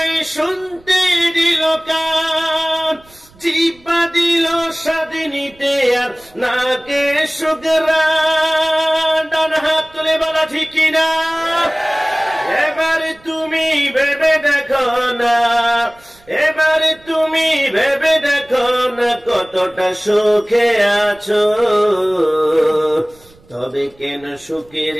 শুনতে দিল কান, জিহ্বা দিল স্বাদ নিতে আর নাকে সুঘ্রাণ। ডান হাত তুলে বলা ঠিক না? এবার তুমি ভেবে দেখো না, এবার তুমি ভেবে দেখো না কতটা সুখে আছো। তবে কেন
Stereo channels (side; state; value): right; noise; rumble, 28 dB below the sound